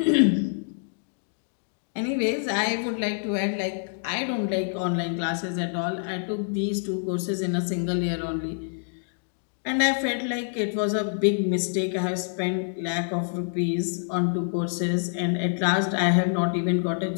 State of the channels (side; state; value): right; silent; digital silence